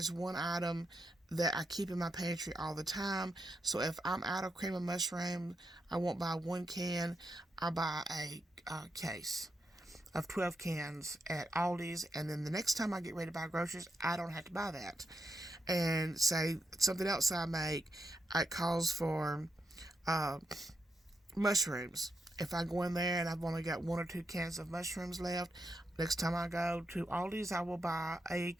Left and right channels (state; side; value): normal; both; correlation 0.83